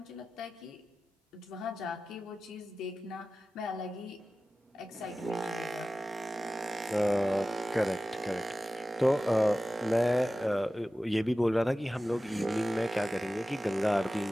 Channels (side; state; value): both; normal; correlation 0.95